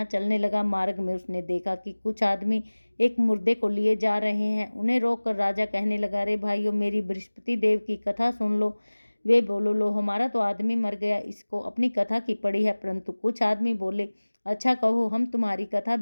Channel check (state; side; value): inverted; both; correlation -1.00